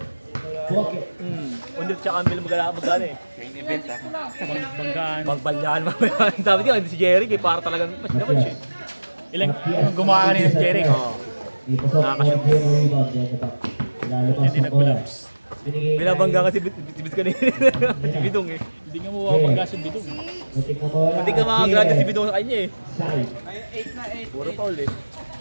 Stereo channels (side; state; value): both; inverted; correlation -1.00